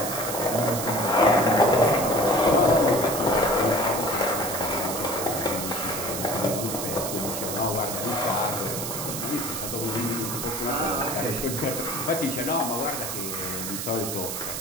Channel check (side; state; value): right; noise; hiss, 5 dB below the sound